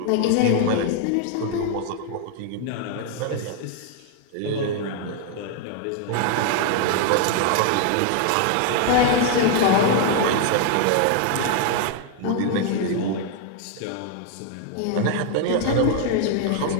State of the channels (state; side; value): different; both; correlation 0.00